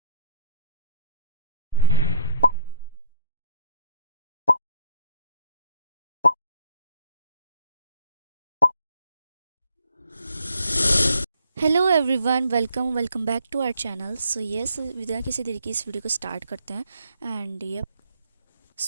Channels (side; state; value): both; inverted; correlation -0.61